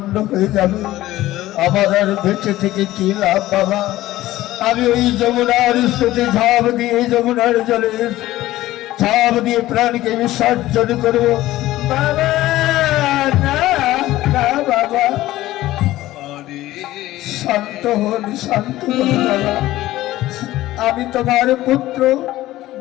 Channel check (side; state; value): right; quieter; 15.9 dB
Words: হয়ে যাবে, আমার আর বেঁচে থেকে কি লাভ বাবা? আমি ওই যমুনার স্রোতে ঝাঁপ দিয়ে, যমুনার জলে ঝাঁপ দিয়ে প্রাণকে বিসর্জন করবো বাবা। না না বাবা, শান্ত হন, শান্ত হন বাবা। আমি তোমার পুত্র,